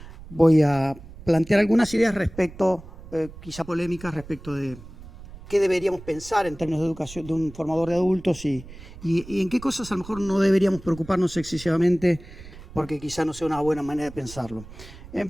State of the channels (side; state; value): right; noise; rumble, 17 dB below the sound